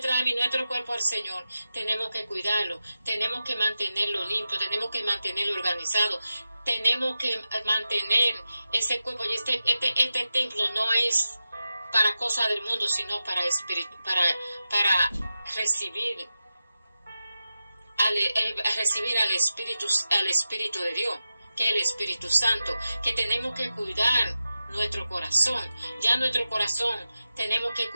alma y nuestro cuerpo al Señor, tenemos que cuidarlo, tenemos que mantenerlo limpio, tenemos que mantenerlo organizado, tenemos que mantener ese cuerpo. Y este templo no es para cosas del mundo, sino para recibir al Espíritu de Dios, que es el Espíritu Santo, que tenemos que cuidar nuestro corazón. Ya nuestro corazón tenemos que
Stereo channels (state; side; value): inverted; both; correlation -0.92